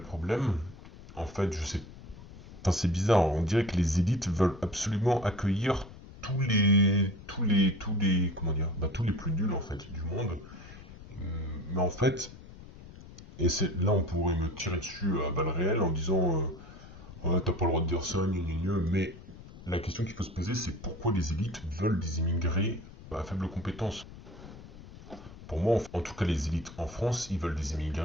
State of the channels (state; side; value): noise; left; rumble, 17 dB below the sound